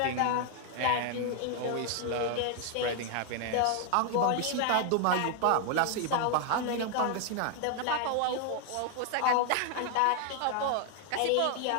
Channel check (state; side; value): different; both; correlation 0.00